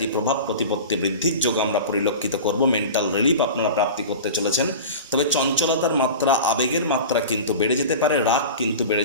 প্রভাব প্রতিপত্তি বৃদ্ধির যোগ আমরা পরিলক্ষিত করব। মেন্টাল রিলিফ আপনারা প্রাপ্তি করতে চলেছেন। তবে চঞ্চলতার মাত্রা, আবেগের মাত্রা কিন্তু বেড়ে যেতে পারে, রাগ কিন্তু বেড়ে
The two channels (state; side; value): inverted; both; correlation -0.33